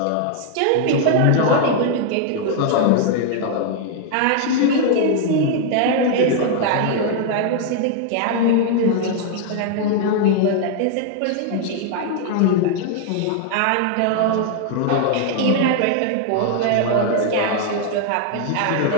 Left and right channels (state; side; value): different; both; correlation 0.00